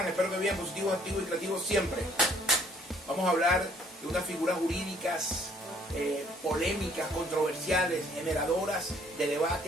Espero que bien, positivos, activos y creativos siempre. Vamos a hablar de unas figuras jurídicas polémicas, controversiales, generadoras de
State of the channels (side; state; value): both; normal; correlation 0.61